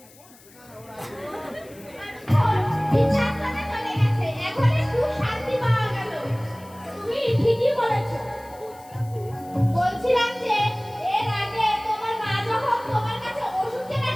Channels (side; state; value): left; noise; hiss, 24 dB below the sound